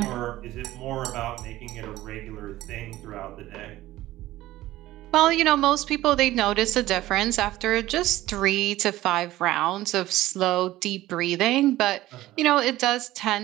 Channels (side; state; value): left; quieter; 16.0 dB